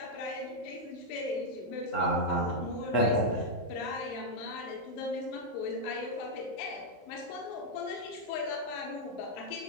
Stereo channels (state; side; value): late; right; 15 ms